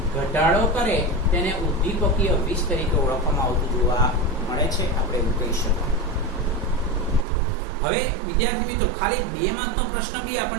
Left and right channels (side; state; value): left; drops out; at 7.2 s